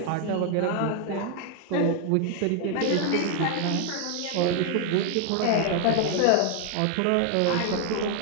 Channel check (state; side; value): different; both; correlation 0.00